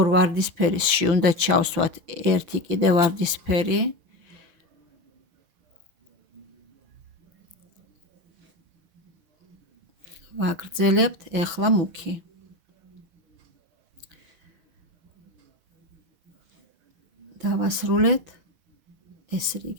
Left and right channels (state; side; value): late; left; 6.0 ms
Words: ვარდისფერისში უნდა ჩავსვათ ერთი კიდე ვარდისფერი. ვაგრძელებთ ეხლა მუქი. დავასრულეთ. ეს